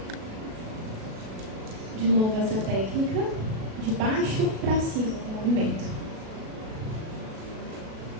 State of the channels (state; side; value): late; left; 37 ms